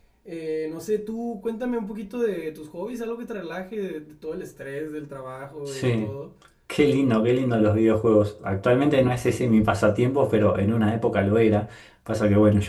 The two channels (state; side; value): identical; both; correlation 1.00